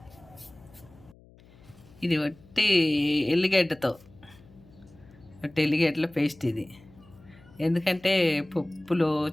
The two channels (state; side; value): noise; left; hum, 25 dB below the sound